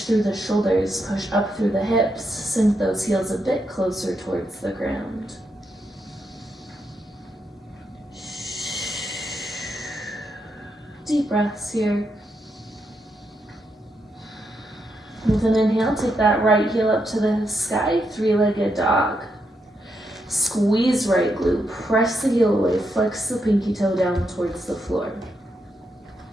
through the shoulders, push up through the hips, sink those heels a bit closer towards the ground. Deep breaths here. With an inhale, take that right heel up to the sky, three-legged dog. Squeeze right glute, press the heel away, flex the pinky toe down towards the floor.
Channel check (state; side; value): normal; both; correlation 0.82